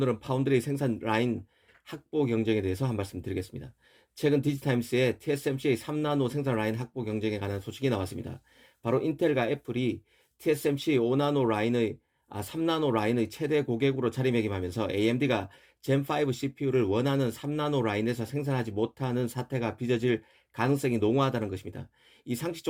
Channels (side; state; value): both; identical; correlation 1.00